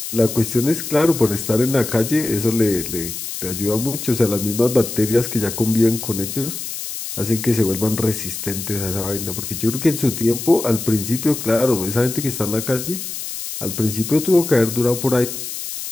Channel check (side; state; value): left; noise; hiss, 7 dB below the sound